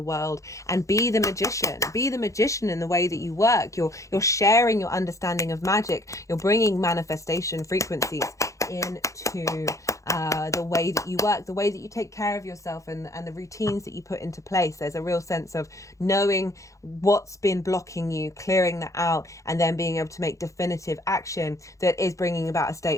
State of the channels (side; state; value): right; late; 0.15 ms